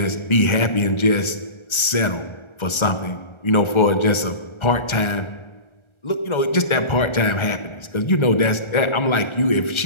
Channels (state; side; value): late; right; 1.3 ms